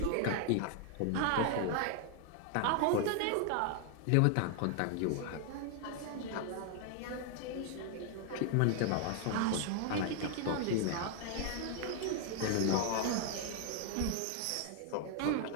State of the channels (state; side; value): different; both; correlation 0.00